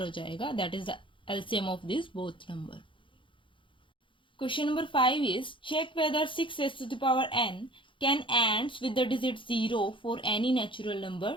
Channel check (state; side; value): late; right; 0.25 ms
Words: हो जाएगा. That is the LCM of these both number. Question number 5 is check whether 6 raised to the power n can ends with the digit 0 for any natural number